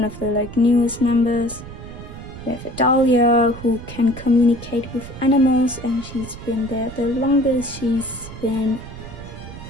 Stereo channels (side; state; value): right; noise; rumble, 13 dB below the sound